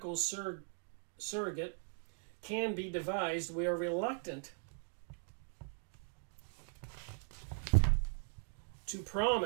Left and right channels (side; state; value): left; silent; 51 dB below the other